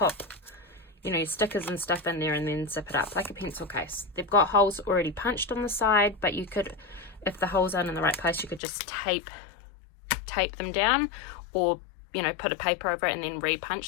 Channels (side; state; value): right; drops out; at 8.6 s